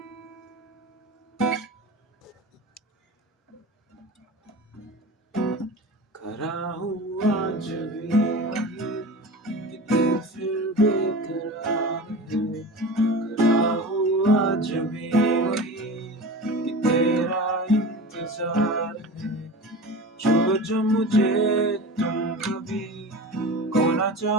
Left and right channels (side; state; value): both; normal; correlation 0.32